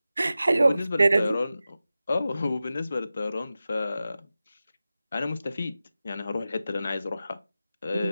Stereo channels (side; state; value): both; inverted; correlation -0.94